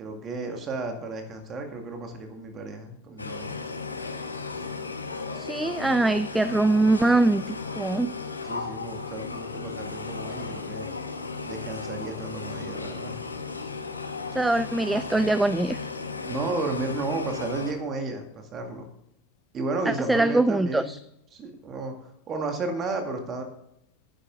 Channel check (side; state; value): both; normal; correlation 0.66